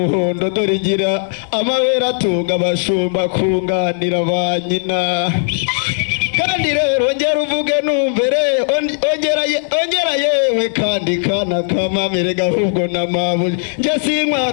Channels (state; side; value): silent; right; digital silence